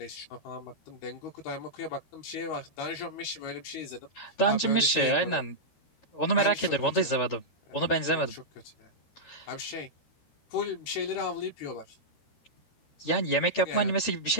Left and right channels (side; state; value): right; late; 13 ms